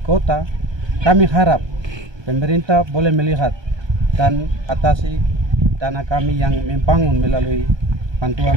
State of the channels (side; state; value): left; late; 1.2 ms